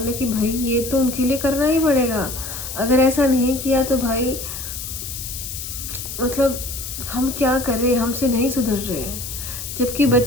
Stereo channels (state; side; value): noise; left; hiss, 8 dB below the sound